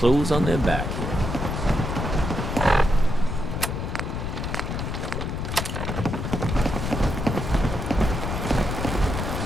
on their back.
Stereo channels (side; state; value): left; noise; rumble, 3 dB below the sound